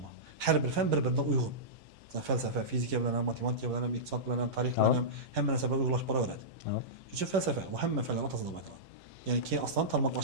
bor. Har bir fan bir-biriga uyg'un. Falsafa, fizika bilan ham, matematika bilan ham, iqtisod bilan ham, tarix bilan ham hamma narsa bilan uyg'unlashib boraveradi. Shuning uchun falsafa va hamma fanlar o'rtasida deb aytiladi. Ya'ni keyin aslan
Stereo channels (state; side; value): late; left; 10 ms